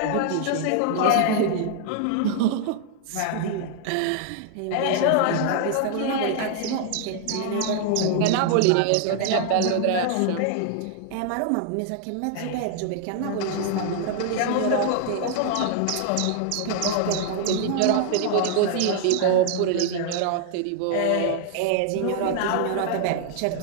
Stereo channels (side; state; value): both; different; correlation 0.00